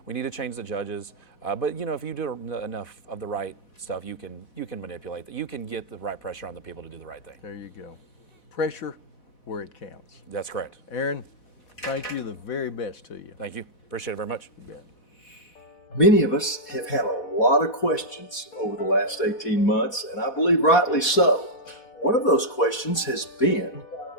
We need to change the judges, but if you do enough of the right stuff, you can manipulate that. You can get the right pressure on the people to do the right thing. There you go. Pressure where it counts. That's correct. Aaron, thank you. The very best to you. Thank you. Appreciate it very much. You bet. Many of us have had a lot of questions over the last 18 months, and I believe rightly so. One of those questions has been,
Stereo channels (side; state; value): right; late; 4.1 ms